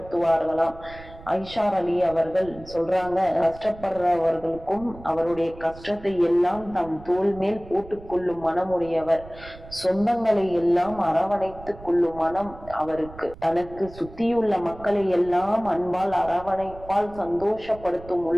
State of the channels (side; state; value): right; noise; rumble, 18 dB below the sound